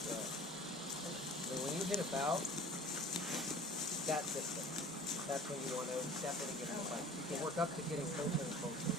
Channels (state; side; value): normal; both; correlation 0.45